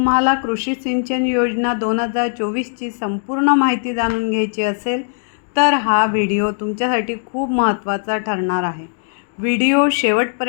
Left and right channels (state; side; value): silent; right; digital silence